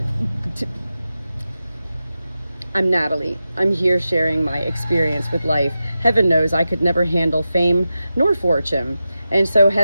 I'm Natalie. I'm here sharing my experience with life. Heaven knows I could never handle fame nor fortune. And so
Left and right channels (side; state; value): both; inverted; correlation -0.91